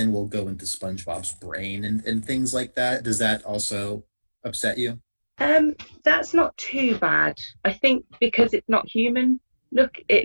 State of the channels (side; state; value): both; inverted; correlation -1.00